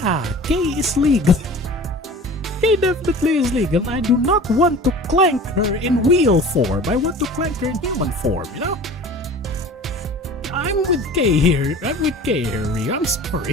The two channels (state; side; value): normal; both; correlation 0.41